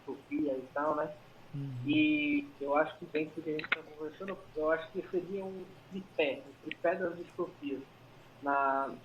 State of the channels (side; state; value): both; identical; correlation 1.00